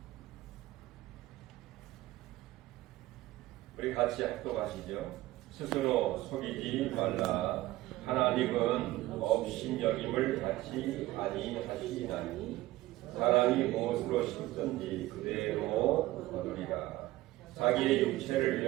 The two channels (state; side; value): quieter; left; 17.2 dB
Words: 우리 같이 합독하시죠. 스스로 속이지 말라. 하나님은 업신여김을 받지 아니하시나니 사람이 무엇으로 심든지 그대로 거두리라. 자기의 육체를